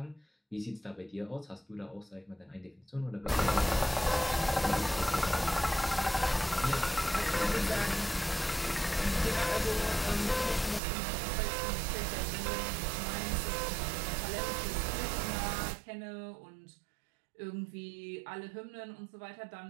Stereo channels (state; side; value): drops out; left; at 10.8 s